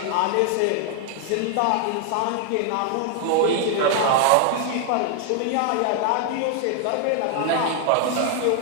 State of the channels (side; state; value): both; different; correlation 0.00